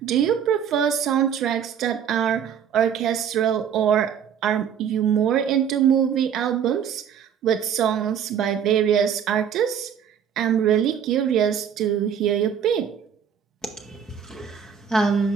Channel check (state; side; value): quieter; left; 8.2 dB